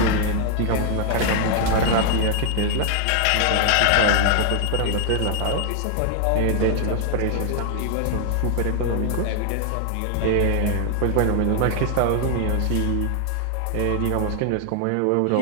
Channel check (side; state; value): both; different; correlation 0.00